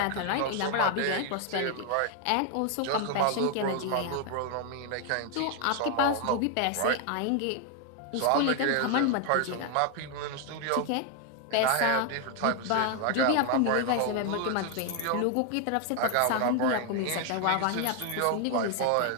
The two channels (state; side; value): different; both; correlation 0.01